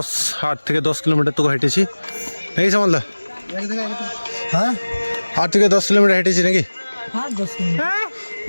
8 থেকে 10 কিলোমিটার তো হেঁটেছি নাকি সামালদা? হ্যাঁ 8 থেকে 10 কিলোমিটার হেঁটেছি নাকি?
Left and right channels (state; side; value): inverted; both; correlation -1.00